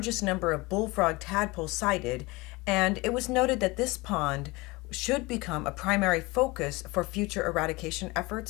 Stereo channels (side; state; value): right; quieter; 23.4 dB